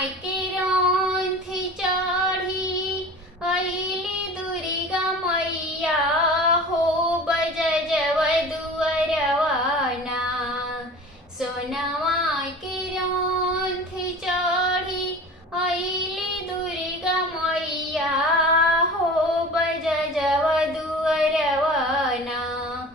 के रौन थी चढ़ी अइली दुर्गा मैया हो, बजजव दुअरवाना। सोना माय के रौन थी चढ़ी अइली दुर्गा मैया हो, बजजव दुअरवाना।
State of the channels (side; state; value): both; normal; correlation 0.38